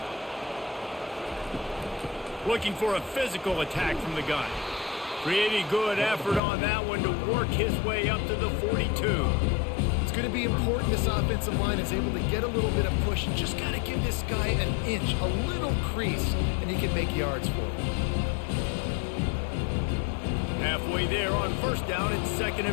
Looking for a physical attack from the gun. Pretty good effort on that one to work his way up to the 42. It's going to be important this offensive line is able to get a little bit of push. Just got to give this guy an inch, a little crease, and he can make yards for him. Halfway there on first down, it's 2nd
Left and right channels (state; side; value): drops out; right; at 6.4 s